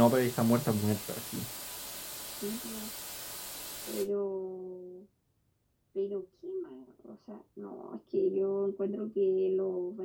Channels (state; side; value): identical; both; correlation 1.00